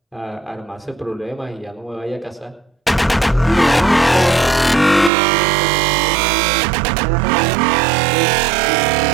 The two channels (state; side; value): drops out; left; at 5.1 s